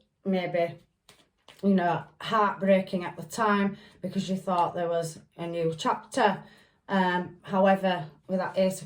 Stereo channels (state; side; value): identical; both; correlation 1.00